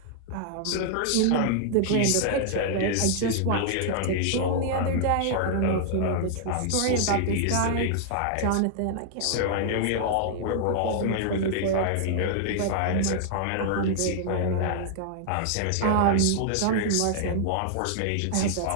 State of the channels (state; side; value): different; both; correlation -0.01